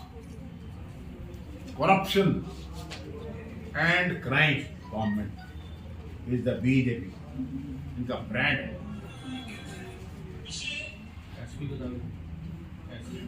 corruption and crime government is the BJP, इनका ब्रांड है। एसपी बता दो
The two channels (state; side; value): identical; both; correlation 1.00